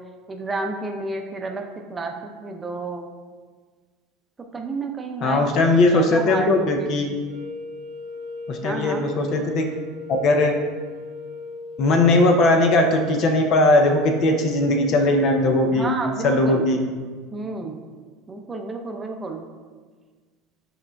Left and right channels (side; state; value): both; normal; correlation 0.34